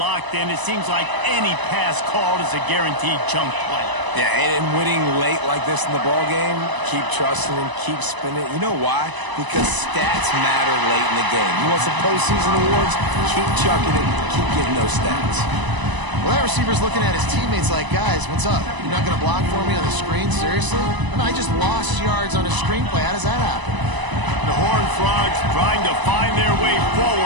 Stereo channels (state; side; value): late; left; 1.0 ms